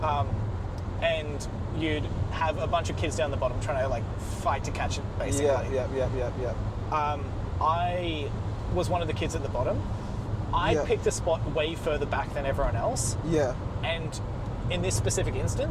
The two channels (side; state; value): both; identical; correlation 1.00